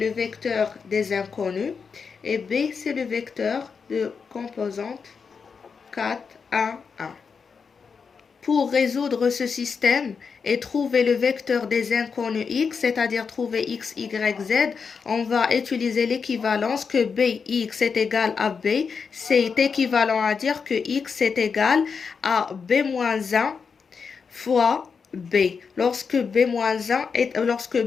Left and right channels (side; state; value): right; quieter; 5.7 dB